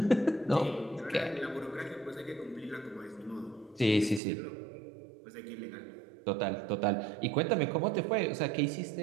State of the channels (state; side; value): drops out; left; at 4.2 s